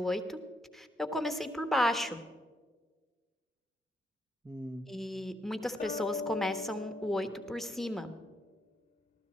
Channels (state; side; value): normal; both; correlation 0.75